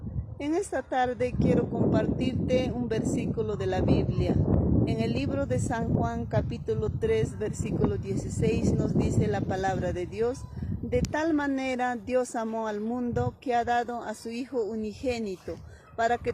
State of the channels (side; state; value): both; identical; correlation 1.00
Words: En esta tarde quiero compartirte un versículo de la Biblia. En el libro de San Juan, capítulo 3, versículo 16, nos dice la palabra de Dios: de tal manera Dios amó al mundo que ha dado a su Hijo unigénito, para que